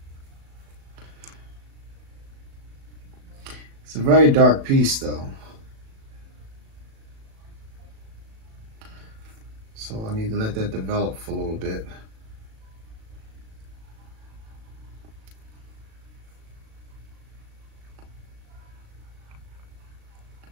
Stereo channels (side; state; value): left; late; 36 ms